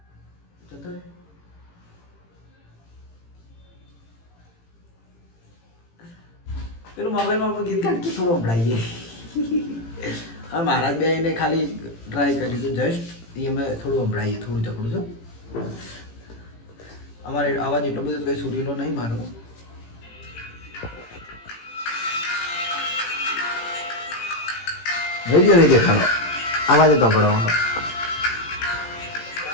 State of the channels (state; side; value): late; right; 18 ms